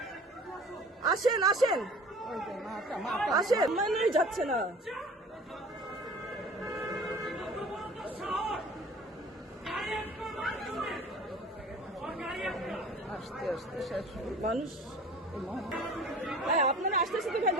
আসেন আসেন আসেন, মানেই যাচ্ছে না। আস্তে আস্তে শেষ মানুষ ভাই, আপনারা আসতে আসতে ভাই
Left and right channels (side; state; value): both; normal; correlation 0.45